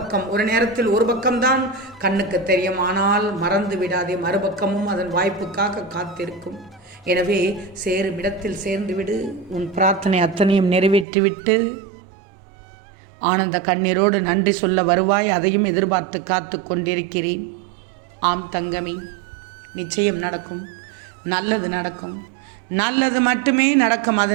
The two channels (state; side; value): drops out; left; at 11.1 s